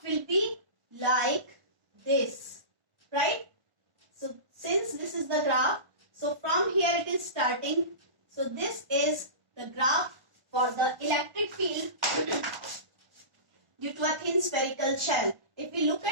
will be like this, right? So since this is the graph, so from here it is starting. So this is the graph for the electric field due to a thin spherical shell. If we look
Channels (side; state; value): left; late; 1.2 ms